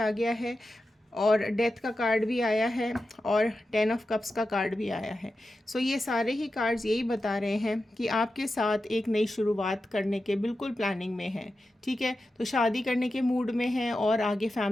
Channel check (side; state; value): both; normal; correlation 0.91